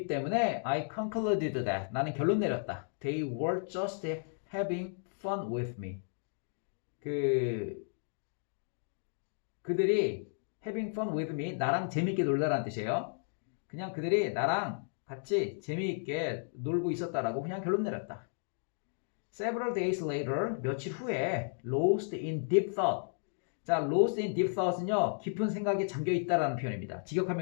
때문에 I concluded that. 나는 결론 내렸다. They were just having fun with me. 그들이 having fun with me, 나랑 재밌게 놀다라는 뜻이에요. 그냥 그들이 나랑 같이 재미있게 놀고 있었다라고 그냥 결론 내렸다. Several days later, 며칠 후에 lost in deep thought. 자, lost in deep thought은요, 깊은 생각에 잠겨 있다라는 표현입니다.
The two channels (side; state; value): right; silent; digital silence